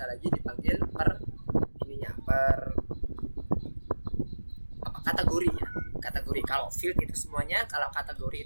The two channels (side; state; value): both; inverted; correlation -1.00